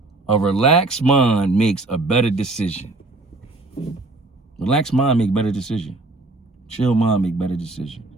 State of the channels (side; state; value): left; quieter; 3.1 dB